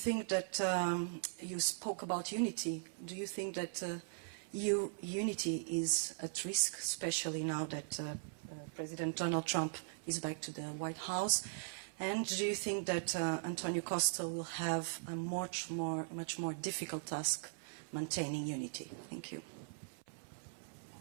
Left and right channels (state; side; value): silent; left; 51 dB below the other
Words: that you spoke about unity? Do you think that unity is at risk, especially now that President Donald Trump is back to the White House? And do you think that Antonio Costa will have a much more difficult task maintaining unity? Thank you.